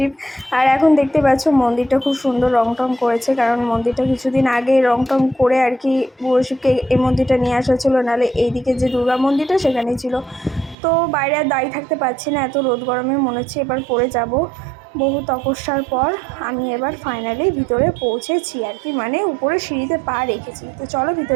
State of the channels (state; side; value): drops out; left; at 10.8 s